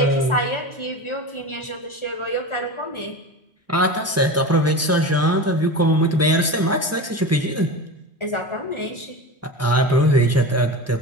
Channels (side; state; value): both; normal; correlation 0.28